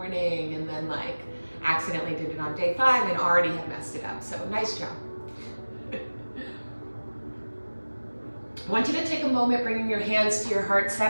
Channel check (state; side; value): inverted; both; correlation -1.00